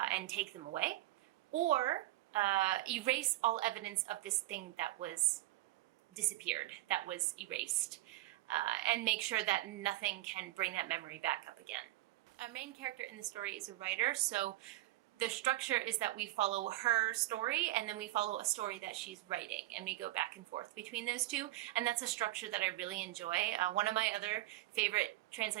take them away, or erase all evidence of this thing that was disappeared, that was erased, and make sure that nothing can bring that memory back up again. Our main character in the story is a writer, so the structure is that we follow her story and then we follow a story that she's writing, and we go back and forth between those two, and that's a structure that I really enjoy. One of my other favorite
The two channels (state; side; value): quieter; left; 17.0 dB